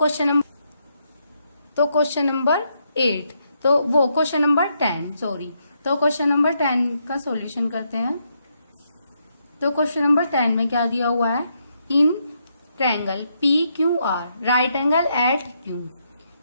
क्वेश्चन नंबर 8, तो वो क्वेश्चन नंबर 10 सॉरी। तो क्वेश्चन नंबर 10 का सॉल्यूशन करते हैं। तो क्वेश्चन नंबर 10 में क्या दिया हुआ है, in triangle PQR right angle at Q,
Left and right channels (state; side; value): inverted; both; correlation -0.78